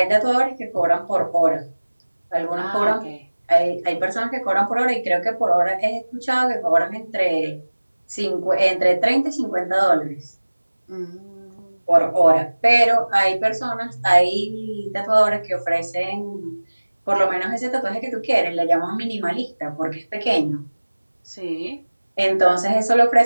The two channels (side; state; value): both; inverted; correlation -1.00